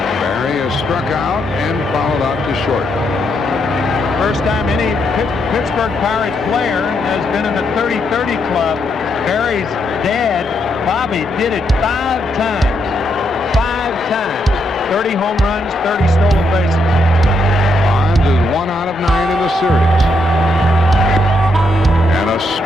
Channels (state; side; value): normal; both; correlation 0.78